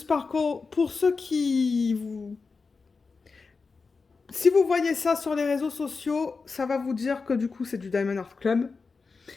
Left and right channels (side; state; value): right; quieter; 4.5 dB